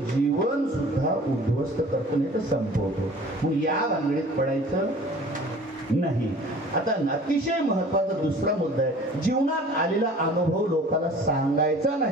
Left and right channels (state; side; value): normal; both; correlation 0.47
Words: जीवन सुद्धा उद्ध्वस्त करतो, नाही तर संपवतो. मग या भानगडीत पडायचं नाही. आता अतिशय महत्वाचा दुसरा मुद्दा आहे, जीवनात आलेला अनुभव लोकांना सांगायचा